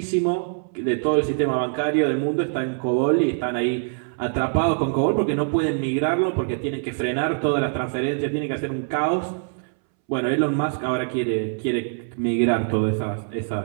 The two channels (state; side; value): silent; left; 63 dB below the other